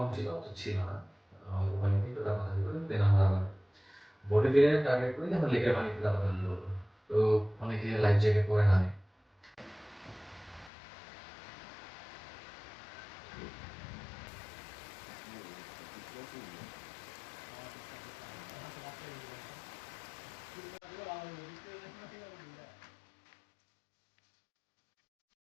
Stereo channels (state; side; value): drops out; right; at 10.7 s